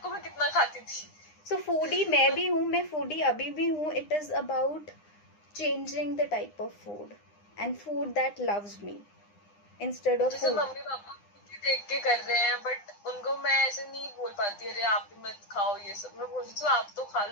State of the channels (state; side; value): late; right; 9.8 ms